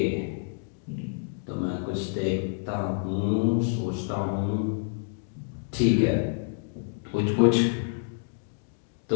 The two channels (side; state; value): right; silent; digital silence